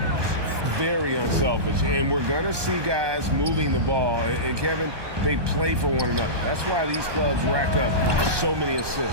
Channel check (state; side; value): late; left; 1.2 ms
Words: Very unselfish, and we're going to see guys moving the ball. And Kevin, they play for one another. That's why these clubs rack up so many